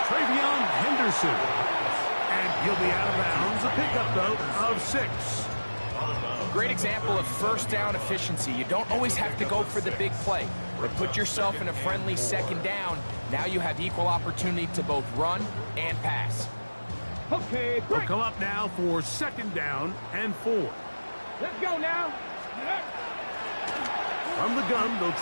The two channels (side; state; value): both; inverted; correlation -1.00